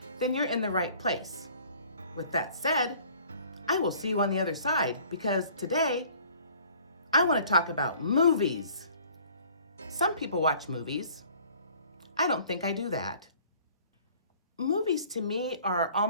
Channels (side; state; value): both; inverted; correlation -0.53